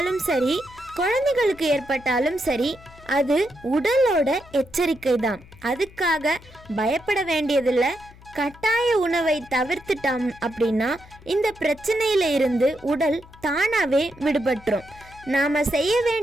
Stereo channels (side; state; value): left; noise; hum, 23 dB below the sound